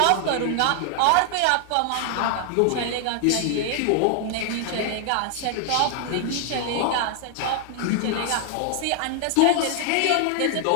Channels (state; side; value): different; both; correlation 0.00